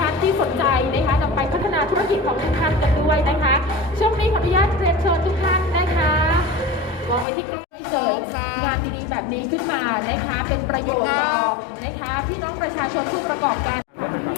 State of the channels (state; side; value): drops out; right; at 7.2 s